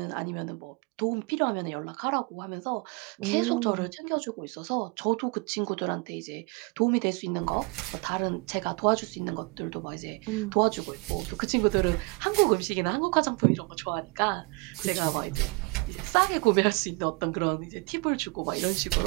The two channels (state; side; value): quieter; left; 28.1 dB